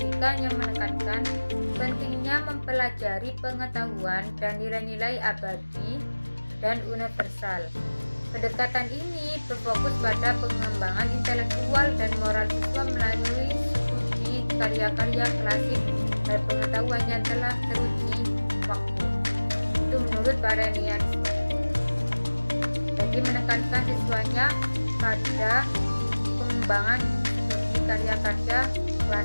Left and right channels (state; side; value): inverted; both; correlation -1.00